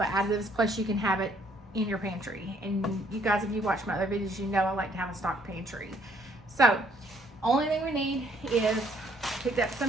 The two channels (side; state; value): both; normal; correlation 0.65